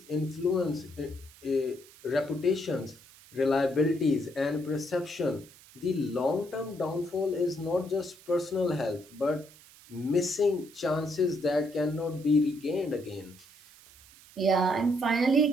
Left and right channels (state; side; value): noise; right; hiss, 23 dB below the sound